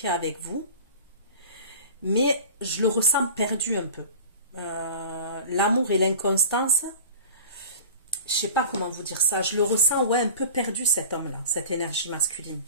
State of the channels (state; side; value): inverted; both; correlation -0.38